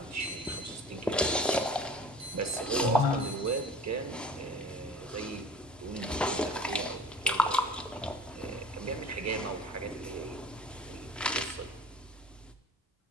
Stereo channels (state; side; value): normal; both; correlation 0.43